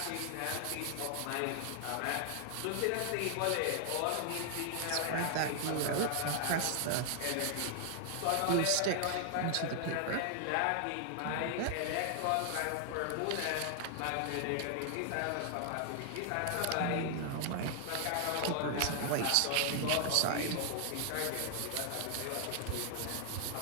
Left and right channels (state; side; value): different; both; correlation 0.00